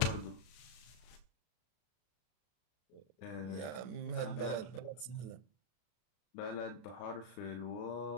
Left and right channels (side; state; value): right; late; 33 ms